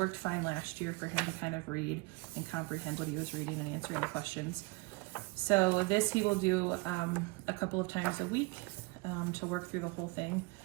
fine last year for him to kind of read and comprehend what he was reading and answering the questions. So this he will do a couple of times a week to work through the whole thing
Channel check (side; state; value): left; quieter; 25.6 dB